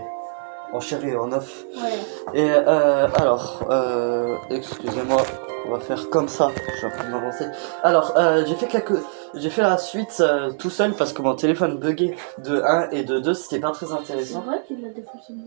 en chair et en œuf. Ouais. Et excusez-moi, on va faire comme ça, je suis en train de m'avancer. Alors, j'ai fait la suite tout seul parce que mon téléphone buguait de 1 et de 2, c'était pas très C'est intéressant. vrai qu'il a des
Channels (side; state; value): left; silent; 61 dB below the other